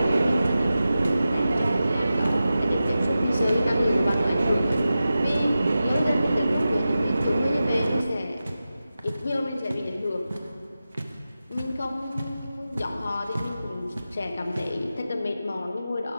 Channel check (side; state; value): both; inverted; correlation -0.93